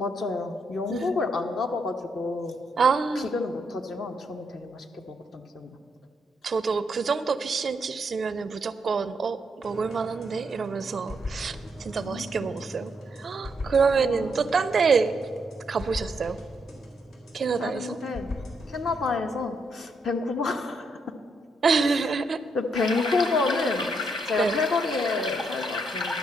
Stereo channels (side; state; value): both; normal; correlation 0.77